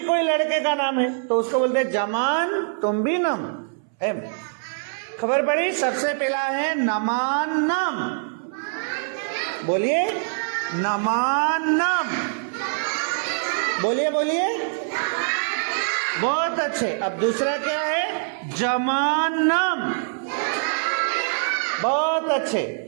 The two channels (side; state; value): left; silent; 63 dB below the other